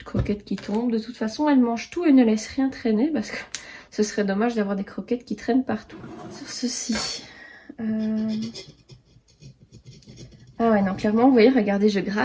croquettes qui tombent. De toute façon, elle mange tout et ne laisse rien traîner parce que ce serait dommage d'avoir des croquettes qui traînent partout. Sur ceci. Ah ouais, non, clairement, vous voyez, regardez, je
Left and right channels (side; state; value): both; identical; correlation 1.00